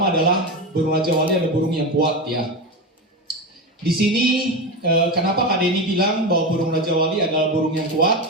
adalah burung Raja Wali adalah burung yang kuat ya. Di sini kenapa Kak Denny bilang bahwa burung Raja Wali adalah burung yang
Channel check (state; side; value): normal; both; correlation 0.19